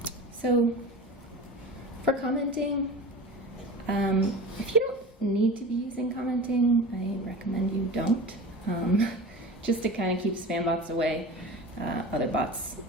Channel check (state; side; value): normal; both; correlation 0.33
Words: So for commenting, if you don't need to be using commenting, I recommend you don't, just to kind of keep spam bots away, other bots.